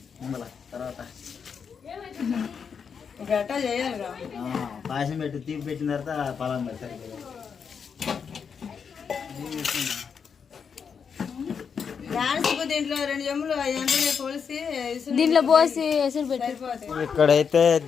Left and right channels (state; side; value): quieter; right; 6.5 dB